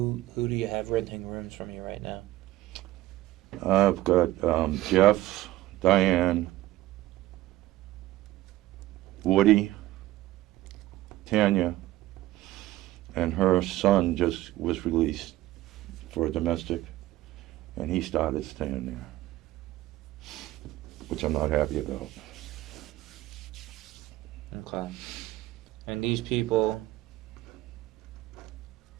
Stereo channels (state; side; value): quieter; left; 16.5 dB